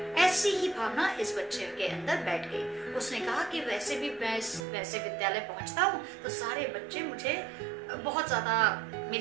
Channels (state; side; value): drops out; left; at 4.7 s